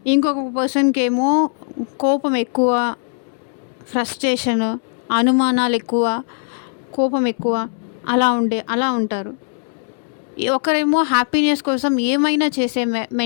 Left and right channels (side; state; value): right; silent; 66 dB below the other